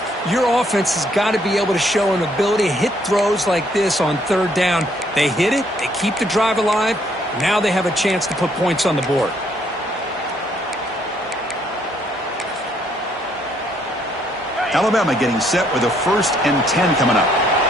your offense has got to be able to show an ability to hit throws like this on 3rd down. They hit it, they keep the drive alive, now they have a chance to put points on the board. Alabama getting set with a 1st and 10 coming up.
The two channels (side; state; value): both; normal; correlation 0.68